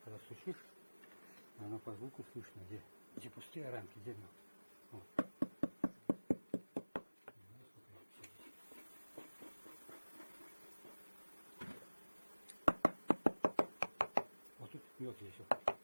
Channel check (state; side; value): inverted; both; correlation -1.00